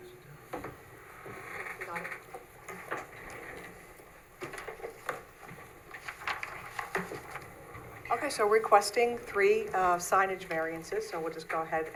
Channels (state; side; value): identical; both; correlation 1.00